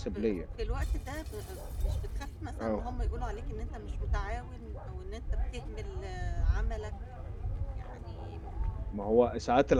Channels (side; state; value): both; identical; correlation 1.00